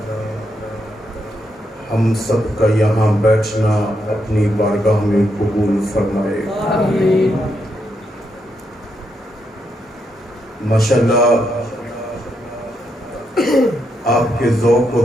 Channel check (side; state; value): both; normal; correlation 0.80